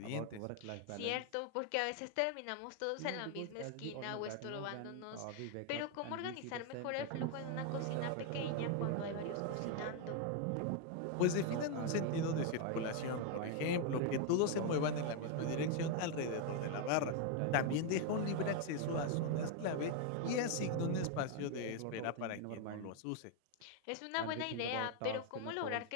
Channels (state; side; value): different; both; correlation 0.01